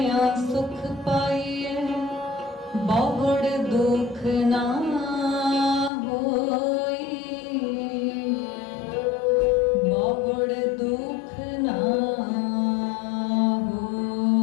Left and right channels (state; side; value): drops out; right; at 5.9 s